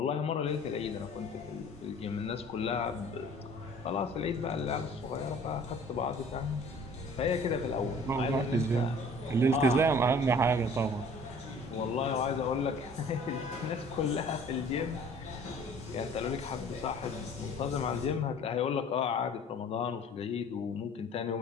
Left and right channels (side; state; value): both; normal; correlation 0.50